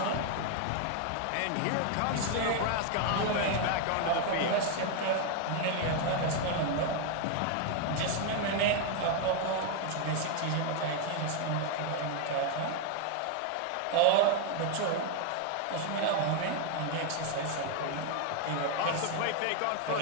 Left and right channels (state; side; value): different; both; correlation 0.00